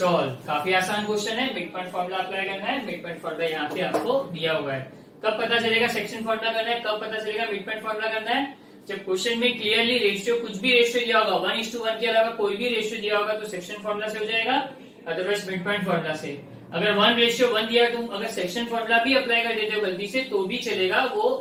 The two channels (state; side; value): identical; both; correlation 1.00